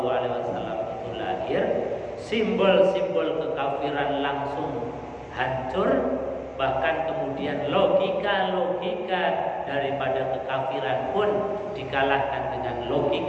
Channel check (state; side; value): identical; both; correlation 1.00